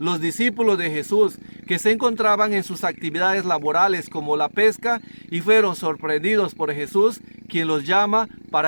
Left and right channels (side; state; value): both; inverted; correlation -1.00